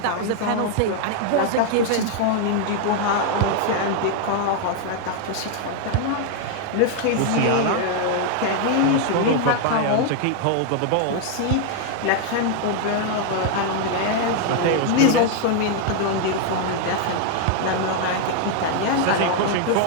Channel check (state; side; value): different; both; correlation 0.00